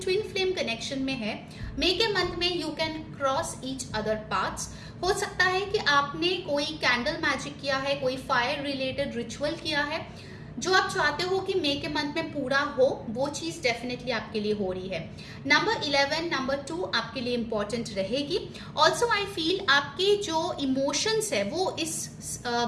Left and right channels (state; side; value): identical; both; correlation 1.00